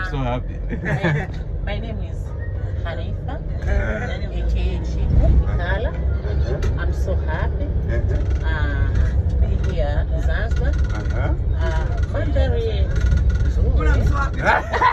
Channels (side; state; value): both; identical; correlation 1.00